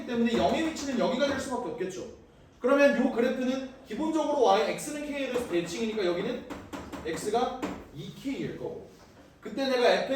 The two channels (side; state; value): both; identical; correlation 1.00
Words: 때문에 0의 위치는 여기가 될 수밖에 없겠죠. 그러면 요 그래프는 기본적으로 y, x는 k에 대해서 대칭이니까 여기는 x가 2k일 거고 그때 내가